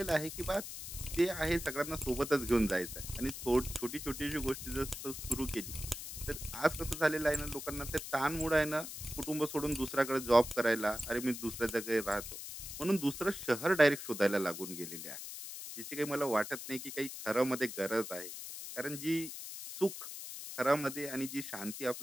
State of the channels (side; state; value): left; noise; hiss, 9 dB below the sound